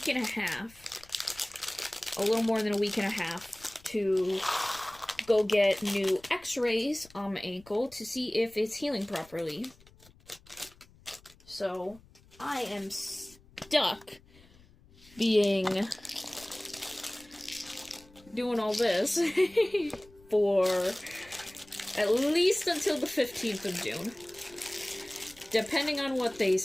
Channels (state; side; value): noise; left; rumble, 26 dB below the sound